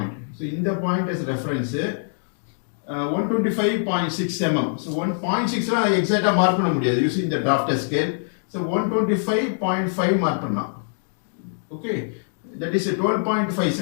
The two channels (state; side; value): silent; right; digital silence